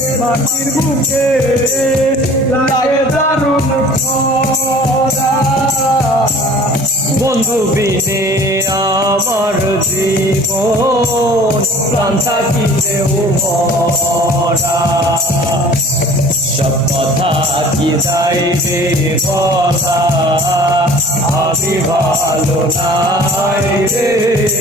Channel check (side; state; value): both; normal; correlation 0.48